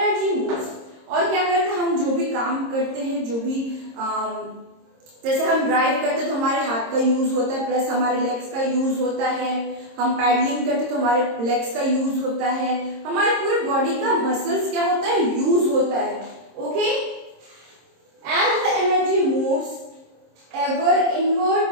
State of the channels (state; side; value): late; left; 26 ms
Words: moves. और क्या करते हैं, हम जो भी काम करते हैं, जो भी जैसे हम ड्राइव करते हैं तो हमारे हाथ का यूज होता है, प्लस हमारे लेग्स का यूज होता है. हम पैडलिंग करते हैं तो हमारे लेग्स का यूज होता है, हमारे पूरे बॉडी का मसल्स क्या होता है, यूज होता है. Okay, as the energy moves ever inward